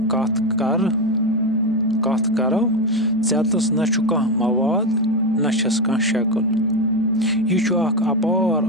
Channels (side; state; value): both; normal; correlation 0.12